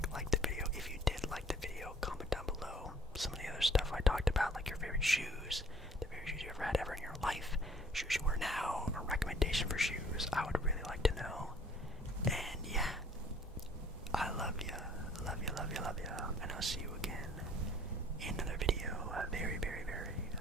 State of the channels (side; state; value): both; normal; correlation 0.55